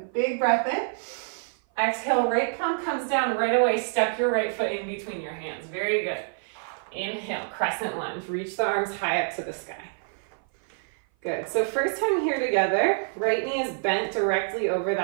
Big breath in. Exhale, right palm comes down right away. Step your right foot in between your hands. Very good. Inhale, crescent lunge. Reach the arms high up to the sky. Good. So first time here together, right knee is bent directly over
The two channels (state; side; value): silent; left; 57 dB below the other